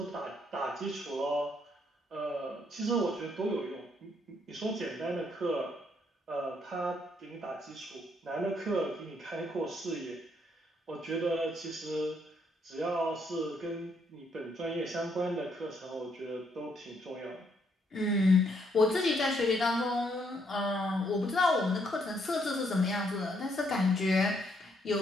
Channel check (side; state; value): both; normal; correlation 0.72